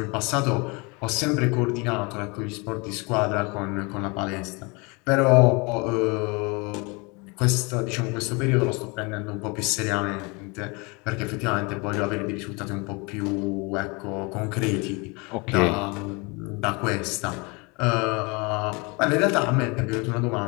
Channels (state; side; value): quieter; right; 28.8 dB